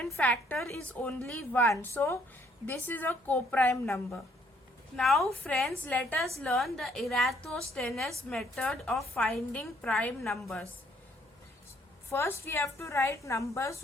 factor is only 1. So this is a co-prime number. Now friends, let us learn the Eratosthenes method of finding prime numbers. First we have to write numbers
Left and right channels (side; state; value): both; normal; correlation 0.66